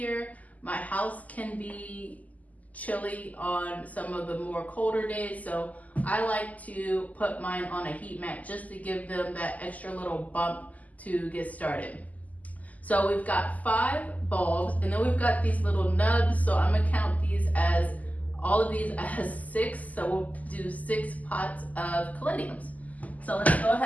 My house can be chilly on some of the more colder days, so I like to put mine on a heat mat just to give them that extra little bump to get started. So we've got 5 bulbs, and then we've got these little nubs, so I'm gonna count all of these as 6, so we'll do 6 pots of caladiums. So let's go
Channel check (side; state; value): right; late; 0.076 ms